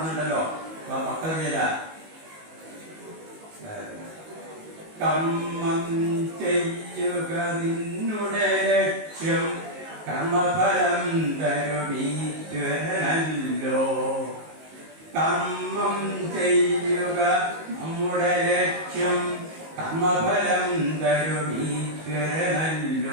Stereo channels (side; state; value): left; late; 19 ms